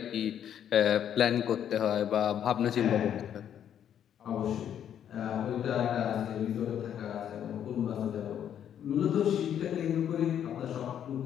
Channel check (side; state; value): right; quieter; 9.6 dB